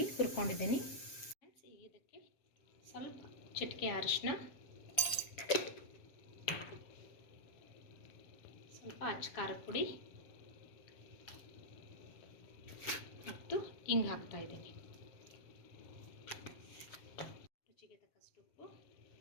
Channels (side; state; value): right; late; 7.1 ms